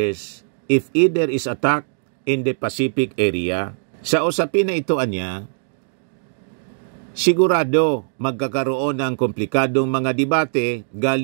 if either is attacked in the Pacific area. Sa usapin na ito, sigurado magkakaroon ng komplikadong mga debate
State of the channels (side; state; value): left; silent; digital silence